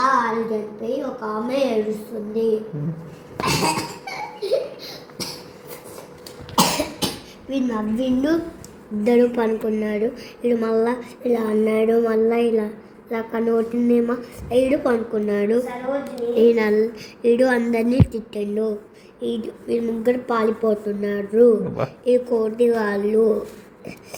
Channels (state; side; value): identical; both; correlation 1.00